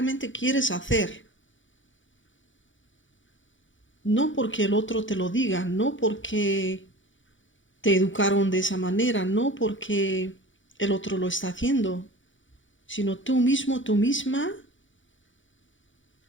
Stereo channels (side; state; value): right; late; 0.56 ms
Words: quieres hacer. No porque el otro te lo diga, no porque te educaron de esa manera, no porque el otro lo está haciendo, sino tú mismo, tú misma,